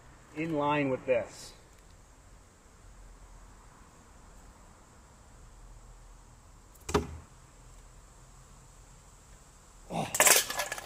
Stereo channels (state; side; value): identical; both; correlation 1.00